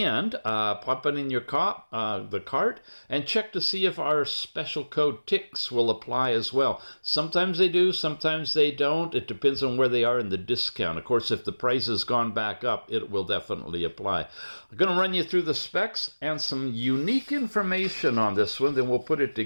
pop it in your the cart and check to see if our special code TICS will apply as well. Sometimes they do, sometimes they don't. It depends on where they are in the discount. Of course, if the price has gone back up, it will definitely apply. I'm going to run you through the specs and some unique information on this one, then we'll put it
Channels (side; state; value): both; inverted; correlation -1.00